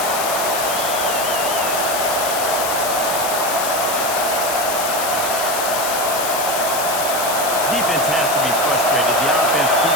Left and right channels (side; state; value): left; noise; hiss, 4 dB below the sound